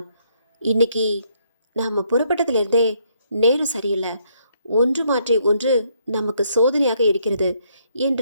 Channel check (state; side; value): inverted; both; correlation -0.71